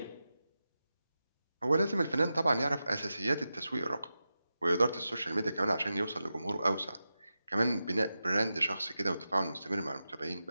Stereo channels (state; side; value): inverted; both; correlation -0.92